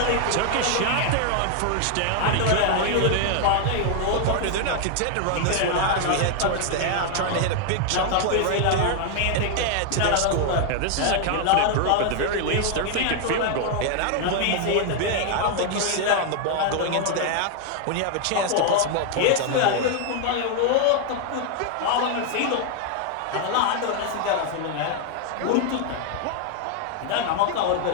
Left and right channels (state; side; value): different; both; correlation 0.00